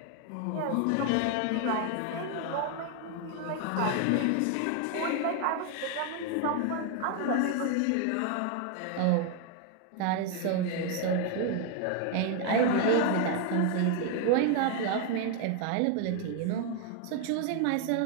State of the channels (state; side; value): different; both; correlation 0.00